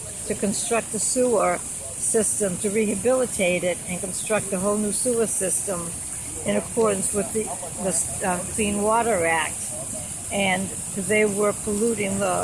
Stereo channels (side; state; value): left; noise; rumble, 25 dB below the sound